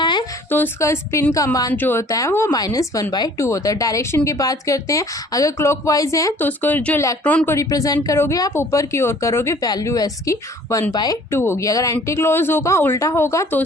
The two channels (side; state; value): both; normal; correlation 0.53